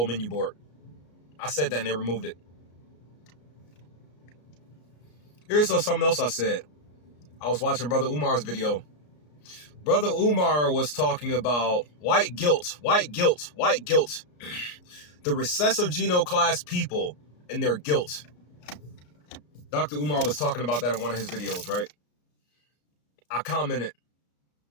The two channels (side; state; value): right; late; 33 ms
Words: menu board? I said that and they removed it. Here's something else I said. I was watching Brother Umar's video. Brother Umar was talking about white guilt, white guilt, white guilt. The recessive genoclass people and their guilt. Dr. Umar was talking about that in one of his videos, right? I commented.